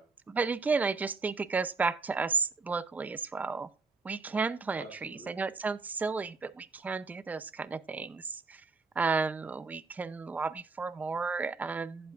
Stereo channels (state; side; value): quieter; left; 4.2 dB